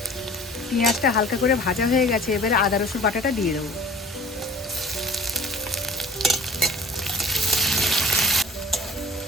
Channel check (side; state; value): both; normal; correlation 0.45